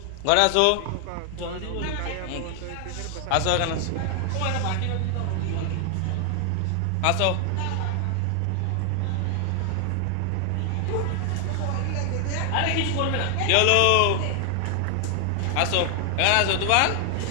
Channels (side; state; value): both; different; correlation 0.00